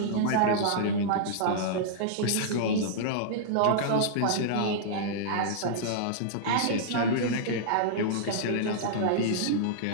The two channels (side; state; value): both; different; correlation -0.02